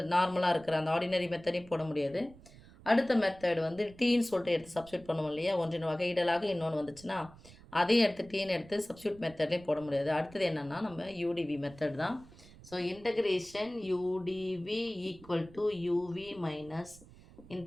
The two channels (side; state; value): right; noise; rumble, 21 dB below the sound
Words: நார்மலா இருக்கிற அந்த ஆர்டினரி மெத்தடையும் போட முடியாது. அடுத்த மெத்தட் வந்து டீன்னு சொல்லிட்டு எடுத்து சப்ஸ்டியூட் பண்ணுவோம் இல்லையா? ஒன்றின் வகையிடலாக இன்னொன்று வந்துச்சுன்னா, அதையும் எடுத்து டீன்னு எடுத்து சப்ஸ்டியூட் மெத்தட்லேயும் போட முடியாது. அடுத்தது என்னன்னா, நம்ம யூடிவி மெத்தட் தான். So integration U DV equal to UV minus